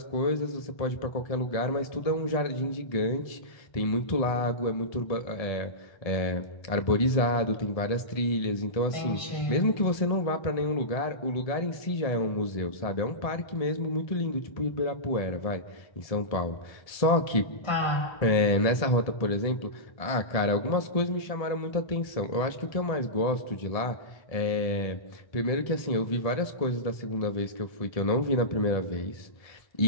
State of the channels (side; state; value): right; late; 1.7 ms